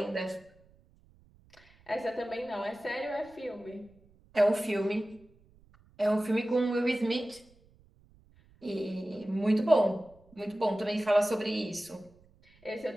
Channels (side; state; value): right; noise; rumble, 29 dB below the sound